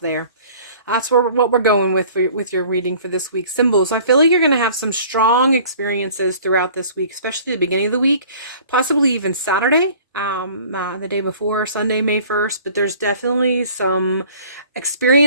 That's what we're going with your reading for this week. Symbols. I feel like you're going to have some strong experiences throughout this week, especially the beginning of the week, possibly even Saturday, the day before, Sunday, May 1st. But there's definitely some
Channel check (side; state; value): both; inverted; correlation -0.50